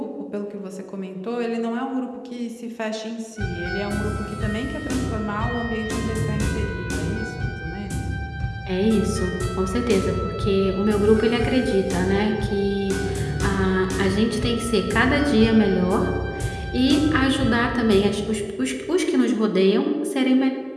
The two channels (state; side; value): identical; both; correlation 1.00